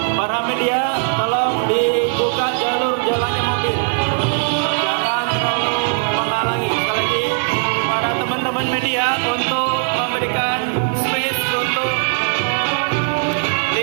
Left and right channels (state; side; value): silent; left; 65 dB below the other